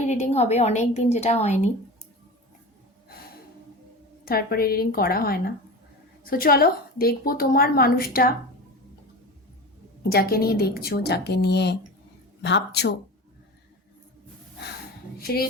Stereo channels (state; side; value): normal; both; correlation 0.30